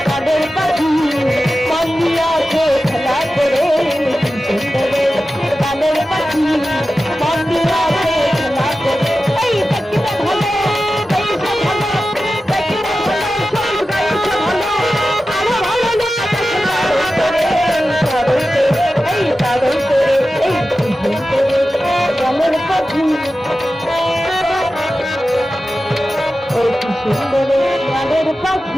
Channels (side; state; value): both; normal; correlation 0.93